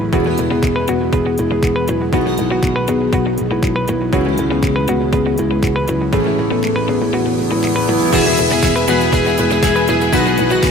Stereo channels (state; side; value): normal; both; correlation 0.60